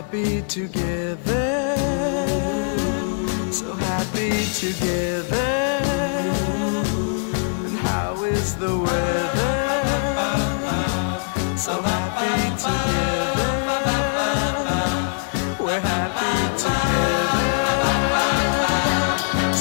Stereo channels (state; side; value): silent; right; 64 dB below the other